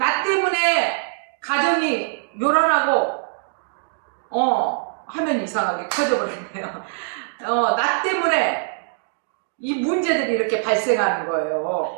때문에 가정이 요란하고 하면 이상하게 커져버렸네요. 나 때문에 이 문제들이 이렇게 발생하는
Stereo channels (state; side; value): silent; left; digital silence